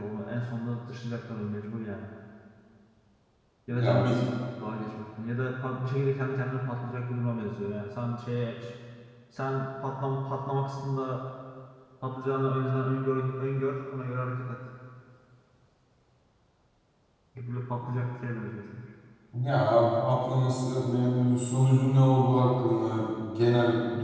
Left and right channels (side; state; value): both; identical; correlation 1.00